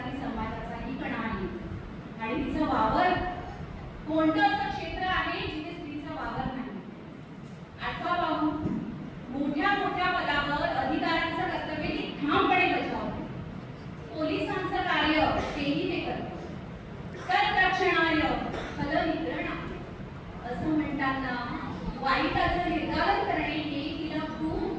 समाजाचाही कणा आहे आणि तिचा वावर कोणतं असं क्षेत्र आहे जिथे स्त्रीचा वावर नाही? आठवा पाहू, मोठ्या मोठ्या पदावर अधिकाऱ्यांचं कर्तव्य ती ठामपणे बजावते। पोलिसांचं कार्य तेही ते करते। कररक्षणार्य फलनिग्रहण असं म्हणताना वाईटाचं निर्धारण करणे हे तिला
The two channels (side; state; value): both; identical; correlation 1.00